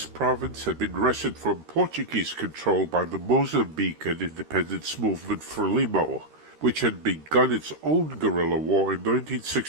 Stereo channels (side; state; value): left; late; 13 ms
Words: province had been wrested from Portuguese control by the Mozambican independence movement Frelimo, which had begun its own guerrilla war in